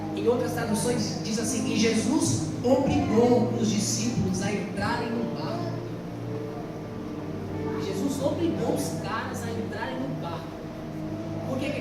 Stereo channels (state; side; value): identical; both; correlation 1.00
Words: Em outras traduções diz assim: e Jesus obrigou os discípulos a entrarem no barco. Jesus obrigou os caras a entrarem no barco. Por que